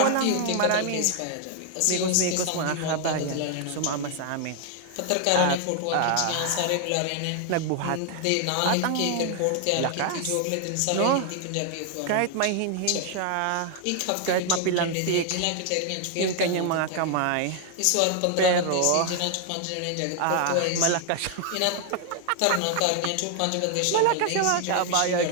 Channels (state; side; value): different; both; correlation 0.00